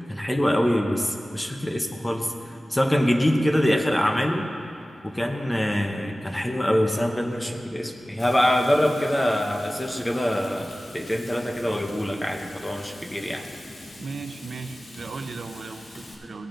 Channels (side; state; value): both; normal; correlation 0.97